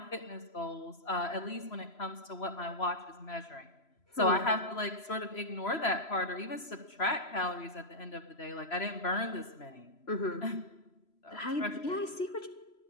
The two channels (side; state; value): right; late; 3.0 ms